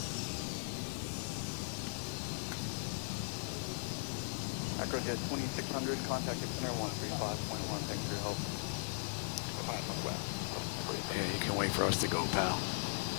Acrojet 2600, contact center 135.1, thanks for your help. Yeah, you can wait for us to go, pal.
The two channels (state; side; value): silent; right; 52 dB below the other